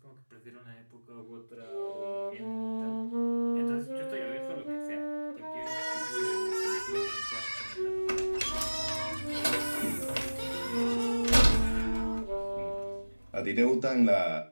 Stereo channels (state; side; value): inverted; both; correlation -1.00